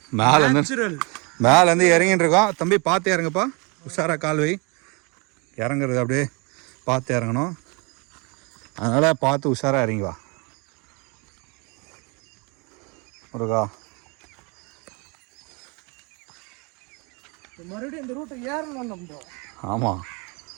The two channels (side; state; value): left; quieter; 30.4 dB